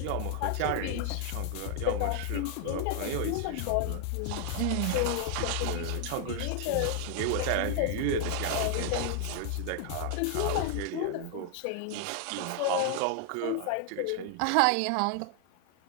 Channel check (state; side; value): different; both; correlation 0.00